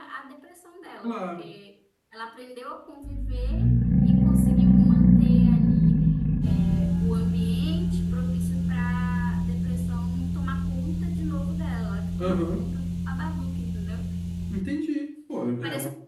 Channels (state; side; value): identical; both; correlation 1.00